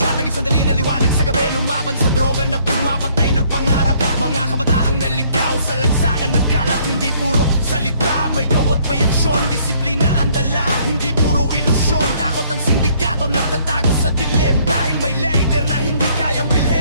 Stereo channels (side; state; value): both; inverted; correlation -0.63